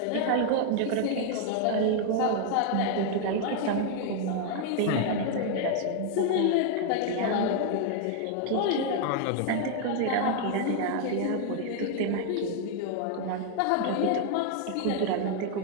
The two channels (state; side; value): different; both; correlation 0.00